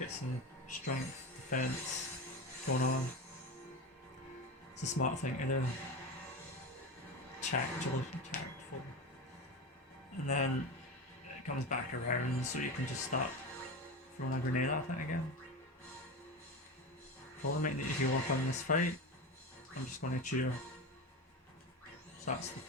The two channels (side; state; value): both; normal; correlation 0.23